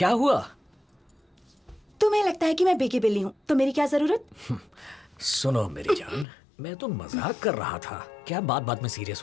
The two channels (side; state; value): right; drops out; at 6.2 s